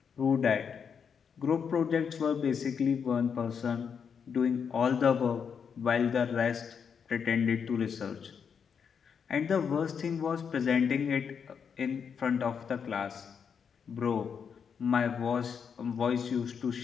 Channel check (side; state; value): right; quieter; 6.8 dB